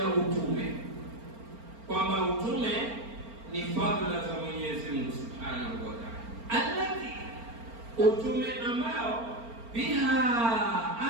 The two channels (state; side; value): late; left; 4.4 ms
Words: utume, kwamba utume ni fadhila za Mwenyezi Mungu Subhanahu wa Ta'ala, alati, utume ambao biha